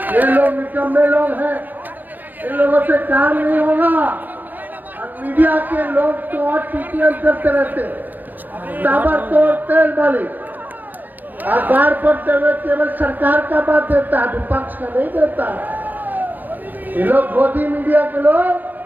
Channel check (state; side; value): late; left; 0.089 ms